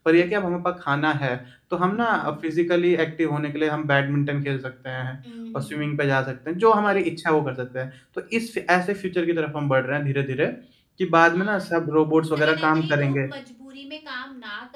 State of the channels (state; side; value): identical; both; correlation 1.00